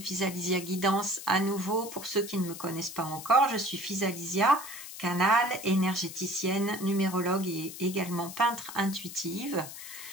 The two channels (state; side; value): noise; left; hiss, 12 dB below the sound